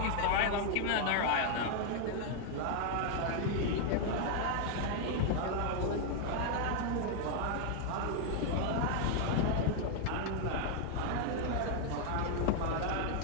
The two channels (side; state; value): both; different; correlation 0.00